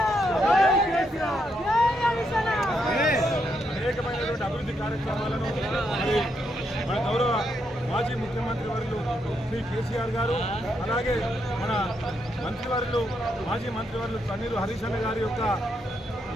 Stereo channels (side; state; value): both; normal; correlation 0.79